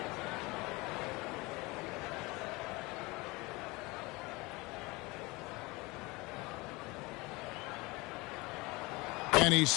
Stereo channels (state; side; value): quieter; right; 23.8 dB